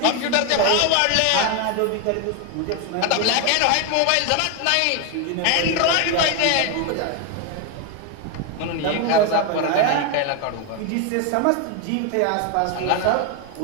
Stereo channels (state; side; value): different; both; correlation 0.01